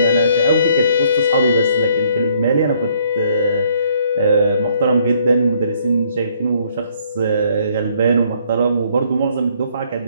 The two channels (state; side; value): inverted; both; correlation -0.64